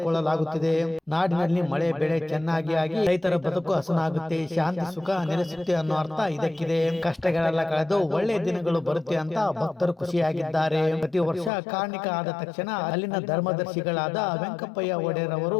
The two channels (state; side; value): drops out; right; at 11.5 s